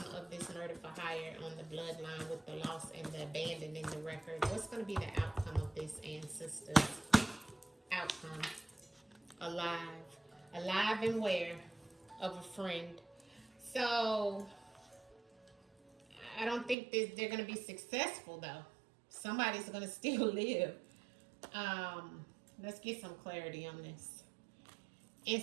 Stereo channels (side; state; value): left; drops out; at 16.8 s